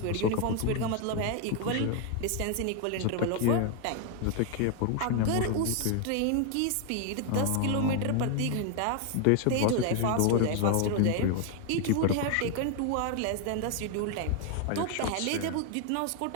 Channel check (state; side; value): different; both; correlation 0.00